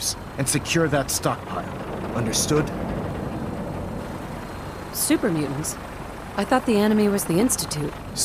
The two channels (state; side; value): identical; both; correlation 1.00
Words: and secure that stockpile. Understood? Super mutants? I thought the enemy was the Institute.